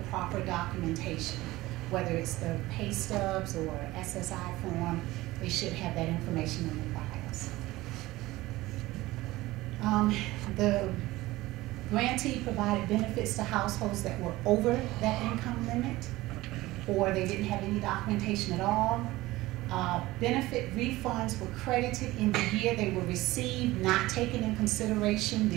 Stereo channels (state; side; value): quieter; left; 18.4 dB